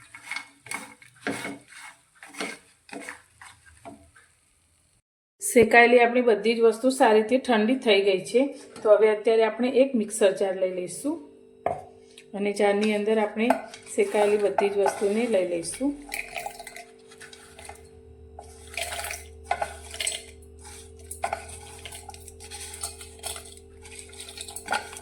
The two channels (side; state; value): both; identical; correlation 1.00